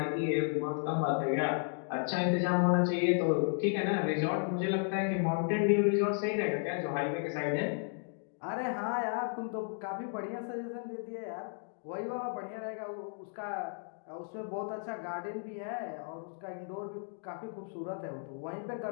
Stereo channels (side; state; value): right; silent; 55 dB below the other